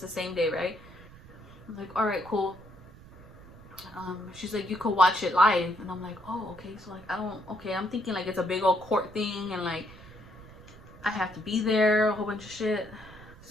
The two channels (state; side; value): noise; right; rumble, 20 dB below the sound